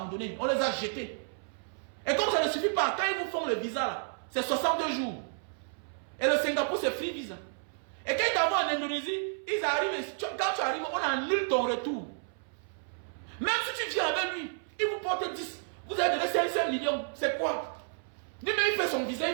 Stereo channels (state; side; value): silent; left; 57 dB below the other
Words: on les a jetés. Et comme ça ne suffit pas, quand ils vous font le visa là, c'est 62 jours. Et le Singapour, c'est free visa. Et quand ils t'envoient en Indonésie, ils arrivent, quand tu arrives, on annule ton retour. Même si tu viens avec lui, il vous porte 10. Vous avez donné 500 millions. C'est quoi? Lui-même, il fait son visa,